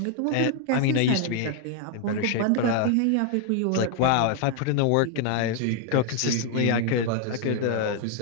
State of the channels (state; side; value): different; both; correlation 0.00